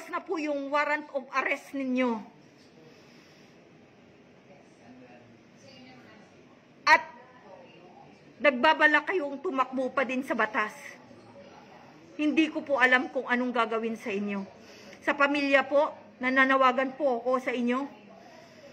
na po yung warrant of arrest ninyo at nagbabala kayong tumakbo pa din sa batas, hindi ko po alam kung anong gagawin sa inyo. Sa pamilya po, nananawagan po ako sa inyo.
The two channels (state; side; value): identical; both; correlation 1.00